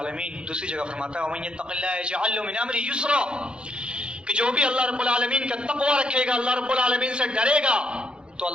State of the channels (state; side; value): late; left; 0.053 ms